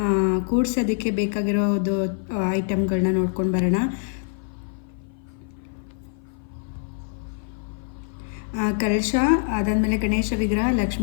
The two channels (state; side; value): silent; right; 56 dB below the other